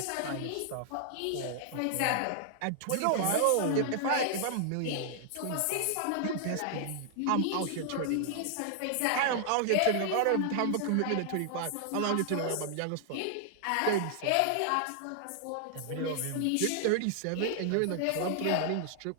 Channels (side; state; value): both; different; correlation 0.00